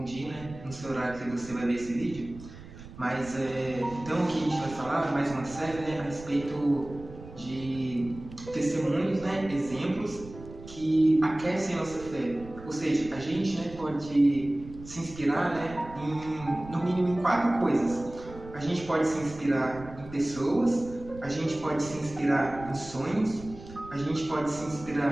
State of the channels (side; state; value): right; noise; rumble, 16 dB below the sound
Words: dia, né, no seu horário que você vai ver esse vídeo. Então aqui a gente vai falar mais uma série, né, a respeito de testemunhos, né, exemplos que aquecem a nossa fé. Ou seja, a gente, né, pode se inspirar, né, no mínimo em 4 coisas. A gente pode se inspirar em pessoas, a gente pode se inspirar em sonhos, a gente pode se